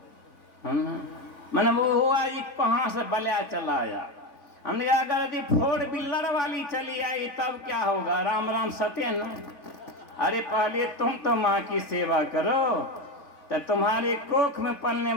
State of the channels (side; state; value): right; late; 3.5 ms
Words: मैंने वो हुआ जी कहाँ से बलिया चला आया। हमने कहा अगर यदि 4 व्हीलर वाली चली आई तब क्या होगा? राम राम सत्यन। अरे पहले तुम तो माँ की सेवा करो, तो तुम्हारे कोख में पलने